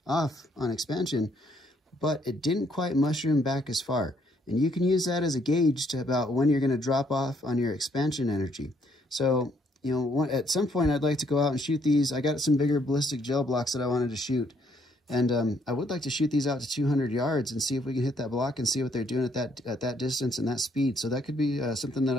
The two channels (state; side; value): normal; both; correlation 0.69